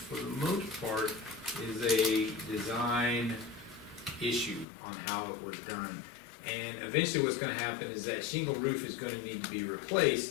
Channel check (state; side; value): drops out; right; at 4.7 s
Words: the most part is a design issue on how it was done. And eventually what's gonna happen is that shingle roof is gonna need to be